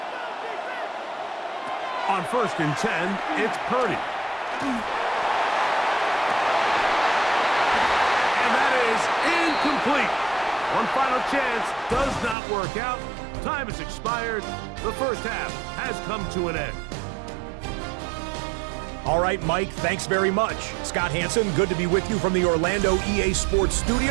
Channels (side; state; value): left; drops out; at 12.4 s